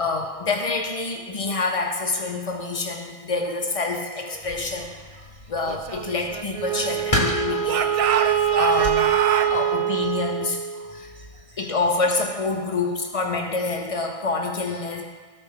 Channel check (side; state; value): right; late; 1.6 ms